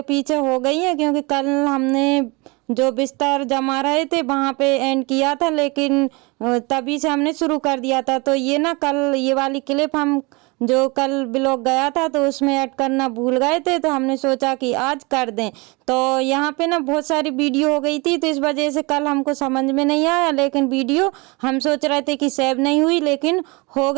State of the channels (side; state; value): left; quieter; 27.2 dB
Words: पीछे हो गई है, क्योंकि कल हमने जो बिस्तर जमा रहे थे वहाँ पे एंड किया था, लेकिन तभी से हमने शुरू कर दिया था। तो ये ना कल ये वाली क्लिप हम जो कल ब्लॉग गया था तो उसमें ऐड करना भूल गए थे, तो हमने सोचा कि आज कर दें। तो यहाँ पे ना बहुत सारी वीडियो हो गई थी, तो इस वजह से कल हमको समझ में नहीं आया, लेकिन वीडियो हम सोच रहे थे कि सेव नहीं हुई, लेकिन हो